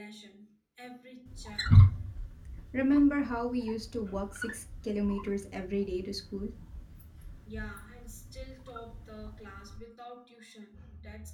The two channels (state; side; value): identical; both; correlation 1.00